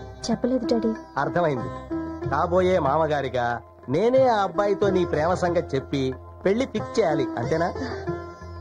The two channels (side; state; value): both; identical; correlation 1.00